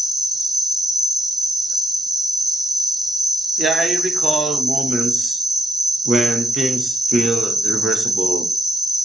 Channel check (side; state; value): both; normal; correlation 0.72